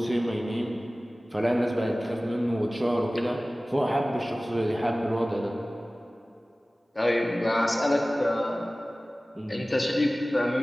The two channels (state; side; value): normal; both; correlation 0.97